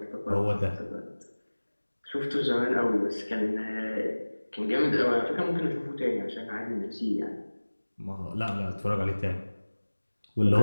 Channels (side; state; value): both; inverted; correlation -1.00